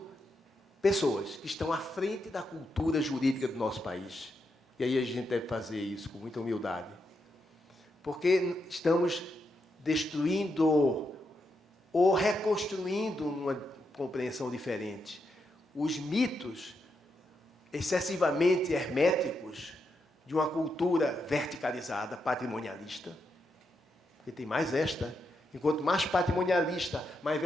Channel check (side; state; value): both; normal; correlation 0.83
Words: pessoas que estão à frente da cultura jurídica do nosso país. E aí a gente deve fazer isso com muita humildade. Porque estamos destruindo ou reconstruindo uma compreensão diferente. Os mitos excessivamente herméticos de uma cultura verticalizada, patrimonialista, porque tem mais esta, enquanto mais patrimonialista, mais